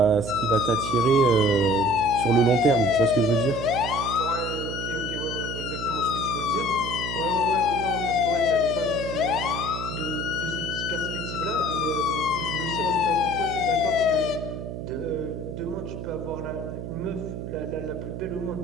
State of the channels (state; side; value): noise; right; hum, 7 dB below the sound